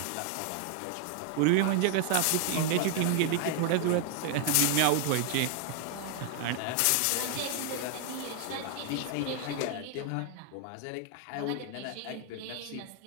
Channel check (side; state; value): both; different; correlation 0.00